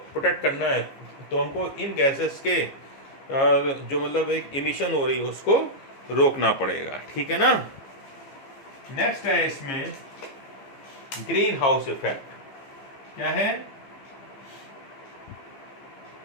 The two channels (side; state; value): right; late; 15 ms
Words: करना है तो हमको इन गैसेस के जो मतलब एक इमिशन हो रही है उसको रोकना पड़ेगा, ठीक है ना। नेक्स्ट है इसमें ग्रीन हाउस इफेक्ट। क्या है?